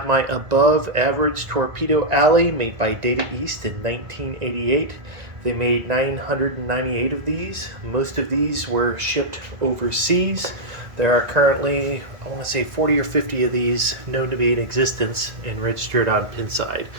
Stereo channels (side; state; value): left; late; 1.9 ms